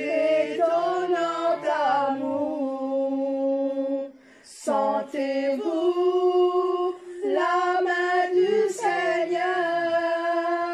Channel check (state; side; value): identical; both; correlation 1.00